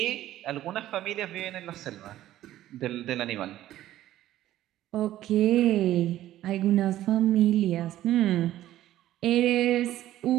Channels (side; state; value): left; quieter; 13.7 dB